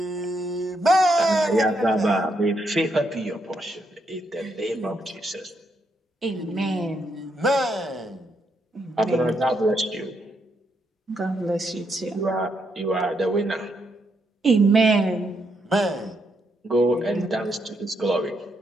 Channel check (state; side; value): normal; both; correlation 0.78